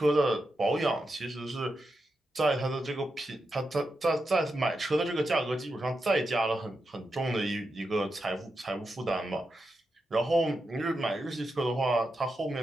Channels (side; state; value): both; normal; correlation 0.87